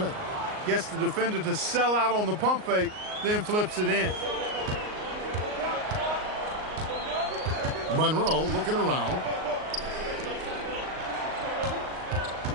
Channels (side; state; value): left; late; 38 ms